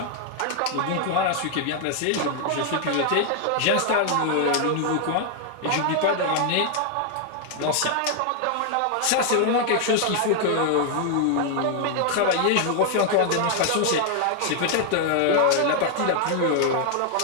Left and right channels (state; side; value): different; both; correlation 0.00